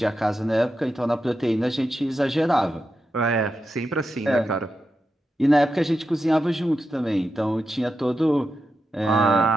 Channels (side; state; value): both; normal; correlation 0.88